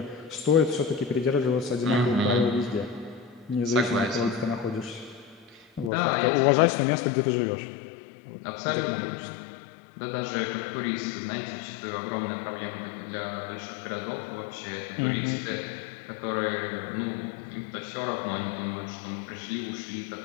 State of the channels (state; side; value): drops out; right; at 5.9 s